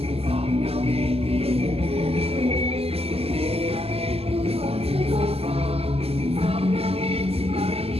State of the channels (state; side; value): late; left; 0.29 ms